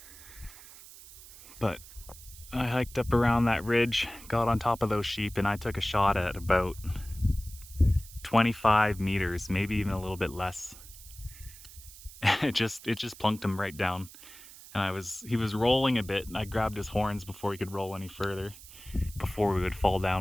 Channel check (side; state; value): right; noise; hiss, 18 dB below the sound